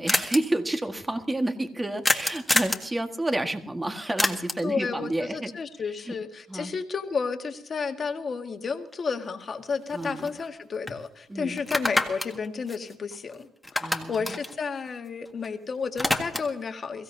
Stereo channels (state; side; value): normal; both; correlation 0.93